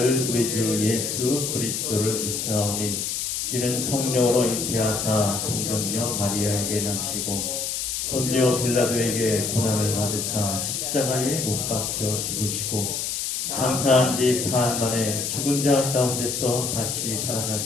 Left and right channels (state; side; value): noise; left; hiss, 2 dB below the sound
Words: 우리 주 예수 그리스도를 믿사오니 이는 성령으로 잉태하사 동정녀 마리아에게 나시고 본디오 빌라도에게 고난을 받으사 십자가에 못 박혀 죽으시고 장사한 지 사흘 만에 죽은 자 가운데서 다시